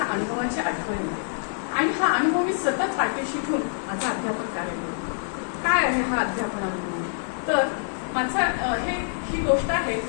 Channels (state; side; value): silent; right; digital silence